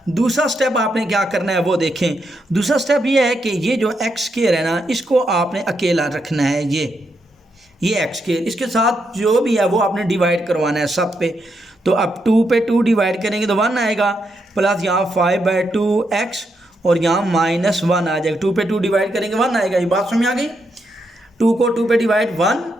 दूसरा स्टेप आपने क्या करना है वो देखें। दूसरा स्टेप ये है कि ये जो x स्क्वायर है ना, इसको आपने अकेला रखना है। ये x स्क्वायर, इसके साथ जो भी है वो आपने डिवाइड करवाना है सब पे। तो अब 2 पे 2 डिवाइड करेंगे तो 1 आएगा, प्लस यहाँ 5/2x और यहाँ -1 आ जाएगा। 2 पे 2 डिवाइड करेंगे 1 आएगा। ये बात समझ आ गई? 2 को 2 पे डिवाइड 1,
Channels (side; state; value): both; normal; correlation 0.81